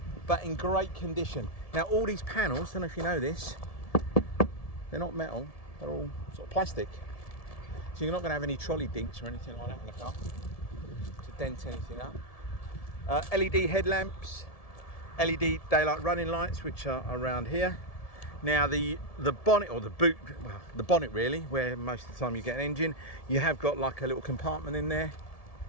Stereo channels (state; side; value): late; right; 1.7 ms